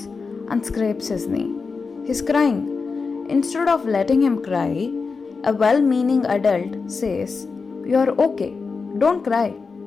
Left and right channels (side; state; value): right; quieter; 4.7 dB